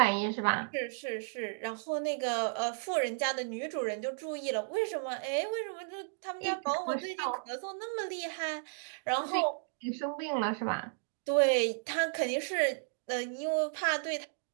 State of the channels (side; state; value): left; silent; digital silence